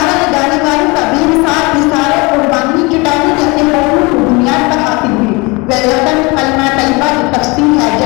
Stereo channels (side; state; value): right; quieter; 26.5 dB